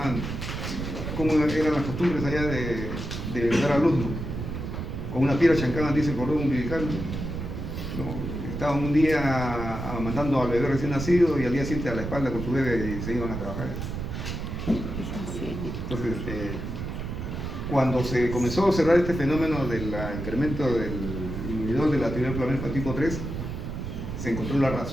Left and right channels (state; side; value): noise; right; rumble, 5 dB below the sound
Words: cómo eran las costumbres allá de dar a luz, ¿no?, con una piedra chancada, dice, cordón umbilical, ¿no? Estaban un día amamantando al bebé recién nacido y al día siguiente a la espalda con su bebé y se iban a trabajar. Entonces, cuando se comenzó a observar este fenómeno del incremento del inhibidor de la actividad inflamatoria tipo 3, se encontró la